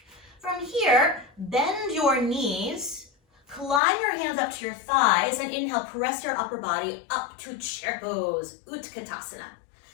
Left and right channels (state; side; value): drops out; right; at 3.8 s